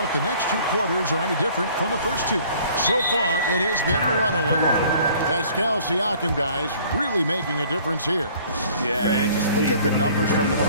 if the next two quarters are any different from the first two. So far, it has been a runaway. Pascal Siakam, guys, really making a difference here. Yeah, and just look at the numbers from the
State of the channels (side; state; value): both; inverted; correlation -0.54